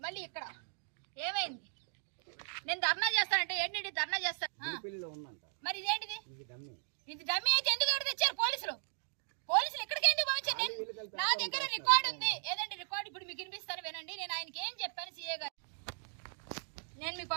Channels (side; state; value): left; silent; 53 dB below the other